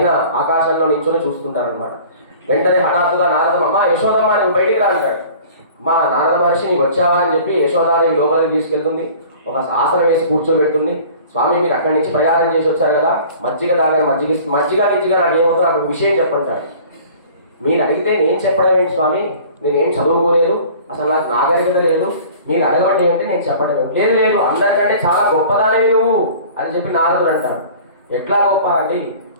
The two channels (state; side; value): inverted; both; correlation -0.46